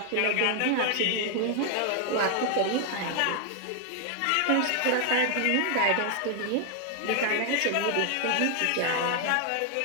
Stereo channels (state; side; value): different; both; correlation 0.01